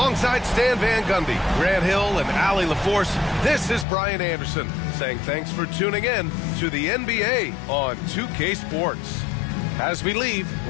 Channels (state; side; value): drops out; right; at 3.9 s